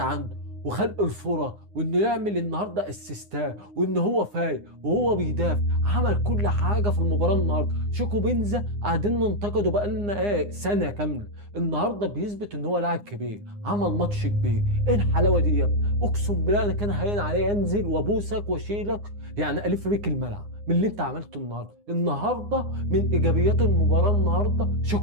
وخلق الفرص، وانه يعمل النهارده اسيستات، وان هو فايق وهو بيدافع. عمل كل حاجه في المباراه النهارده. شيكو بنزا قاعدين ننتقده بقالنا سنه كامله، النهارده بيثبت ان هو لاعب كبير، عمل ماتش كبير. ايه الحلاوه دي يا ابني؟ اقسم بالله انا كان هين عليا انزل وابوسك واشيلك، يعني الف بيك الملعب من اللي انت عملته النهارده. من ايجابيات المباراه النهارده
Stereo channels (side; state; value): left; late; 9.7 ms